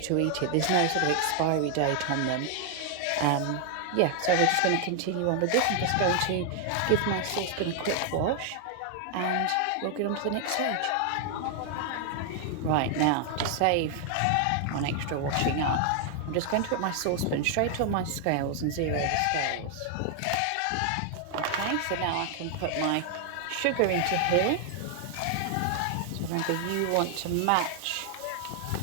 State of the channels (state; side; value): different; both; correlation 0.00